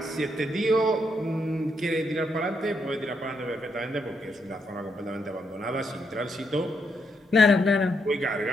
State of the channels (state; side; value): normal; both; correlation 0.78